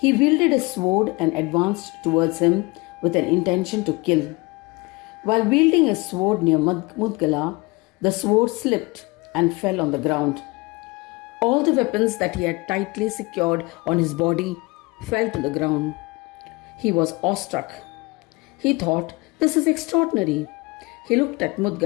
wielded a sword and advanced towards him with an intention to kill. While wielding a sword near Mudgala, the sword slipped and fell on the ground. All the weapons that he had tightly secured on his body fell to the ground. He was awestruck. He thought, "This is extraordinary." He looked at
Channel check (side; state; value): right; quieter; 25.0 dB